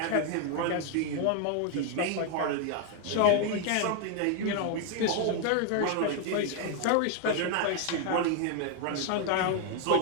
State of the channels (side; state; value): both; different; correlation 0.00